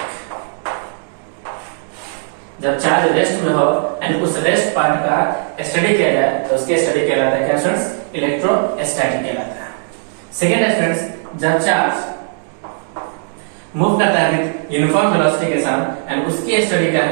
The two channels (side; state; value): left; silent; 68 dB below the other